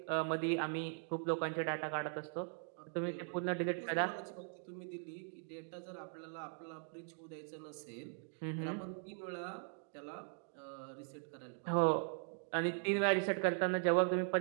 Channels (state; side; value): silent; left; 51 dB below the other